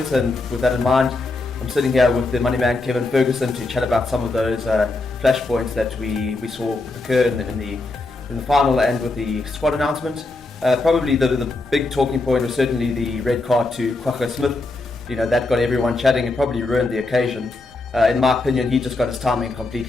and with that in mind, I'm sitting here with the money man Kevin Ferguson to chat about some of those flashpoints that we saw occur in the final and with the squad announcement. Probably the big talking point was certainly the red card to Kwagga Smith. You know, that got everyone chatting and probably ruined the occasion. In my opinion, he just got his timing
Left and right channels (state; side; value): quieter; right; 3.2 dB